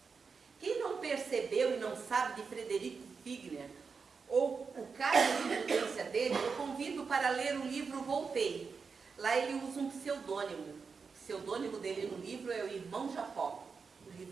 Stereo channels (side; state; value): left; quieter; 5.2 dB